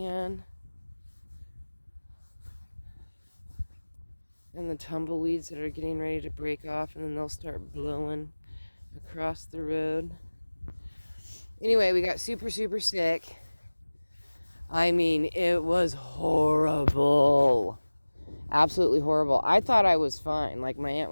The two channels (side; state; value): both; inverted; correlation -1.00